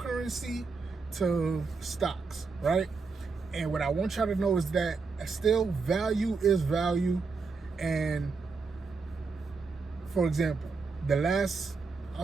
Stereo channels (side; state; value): left; quieter; 4.5 dB